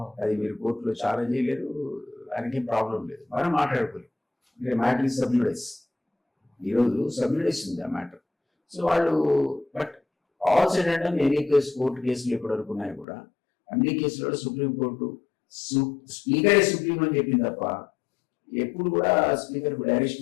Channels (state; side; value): drops out; right; at 13.1 s